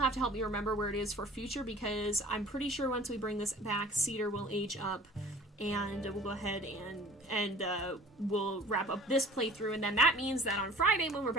to help me remember where it is for future, because I'm pretty sure once we bring this back, Cedar will age up, and we'll go ahead and we'll wrap up this playthrough, and then that means that on Friday, when we're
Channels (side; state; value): both; normal; correlation 0.47